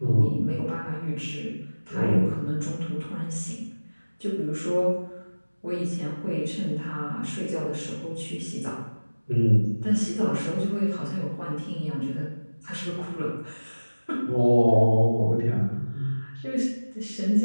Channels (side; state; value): both; inverted; correlation -1.00